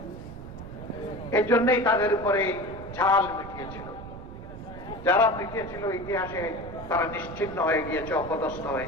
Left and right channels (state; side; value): noise; right; rumble, 12 dB below the sound